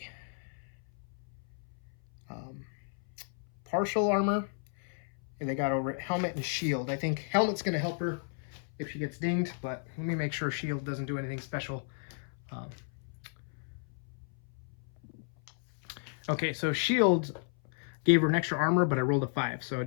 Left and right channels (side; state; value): right; silent; 56 dB below the other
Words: partial armor. They got over it. Helmet and shield. I think helmet's going to help her if she gets dinged, but let me make sure shield doesn't do anything special. Okay, so shield gave her an extra armor, but I rolled a 5, so